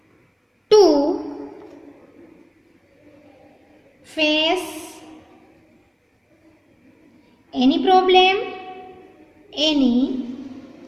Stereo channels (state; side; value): identical; both; correlation 1.00